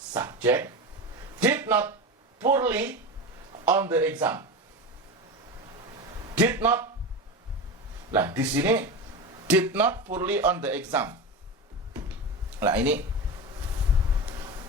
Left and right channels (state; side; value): normal; both; correlation 0.24